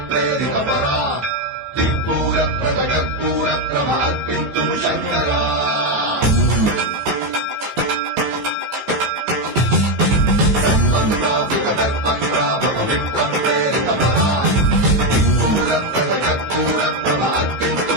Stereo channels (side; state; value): left; late; 14 ms